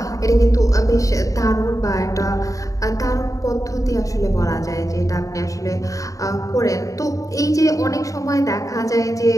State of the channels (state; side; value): late; right; 0.16 ms